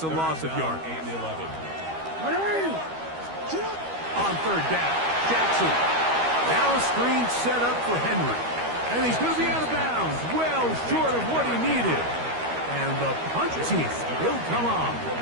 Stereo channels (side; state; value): left; late; 13 ms